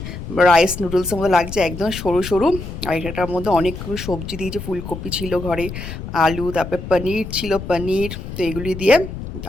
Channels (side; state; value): left; noise; rumble, 9 dB below the sound